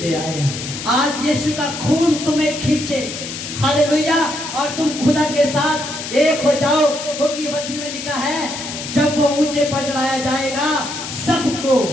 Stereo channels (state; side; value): noise; left; hiss, 8 dB below the sound